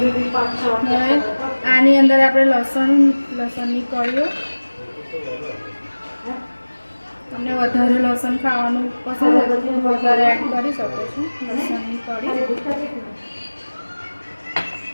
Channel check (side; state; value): both; inverted; correlation -1.00